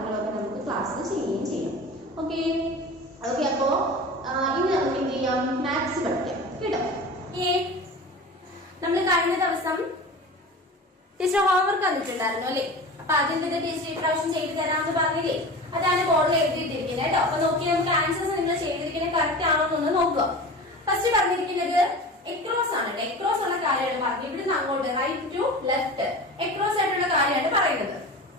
നമുക്ക് ക്ലാസ്സിൽ ചെയ്യുകയും ചെയ്യാം. ഓക്കെ ഓക്കെ അപ്പോൾ ഇനി നമുക്ക് എന്ത് ചെയ്യാം, മാത്സ് പഠിക്കാം കേട്ടോ. നമ്മൾ കഴിഞ്ഞ ദിവസം ടീച്ചർ ഹോംവർക്ക് തന്നിട്ടുണ്ടായിരുന്നു അല്ലേ. അപ്പൊ അതിന്റെ ടീച്ചർ ഇപ്രാവശ്യം ചെയ്തു തരാമെന്ന് പറഞ്ഞില്ലേ, അതാണ് ബോർഡിൽ എഴുതിയിട്ടിരിക്കുന്നത് കേട്ടോ. അപ്പൊ നോക്കി നമുക്ക് ആൻസേഴ്സ് നിങ്ങൾ ചെയ്തിരിക്കുന്നത് കറക്റ്റ് ആണോ എന്നൊന്ന് നോക്കുക. ഫസ്റ്റ് പറഞ്ഞിരിക്കുന്നത് എക്രോസ് ആണ്. എക്രോസ് ഉള്ള കാര്യമാണ് പറഞ്ഞത്. ഇവിടുന്ന് അങ്ങോട്ട് റൈറ്റ് ടു ലെഫ്റ്റ് എക്രോസ് ആയിട്ടുള്ള കാര്യമാണ് പറയുന്നത്.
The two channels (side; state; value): both; normal; correlation 0.34